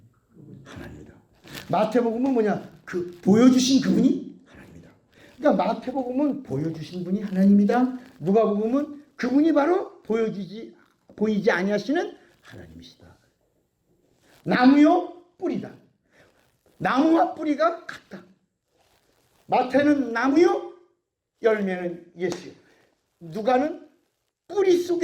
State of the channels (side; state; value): both; identical; correlation 1.00